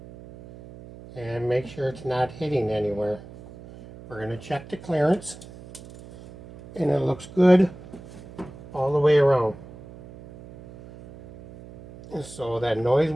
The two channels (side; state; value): right; noise; hum, 18 dB below the sound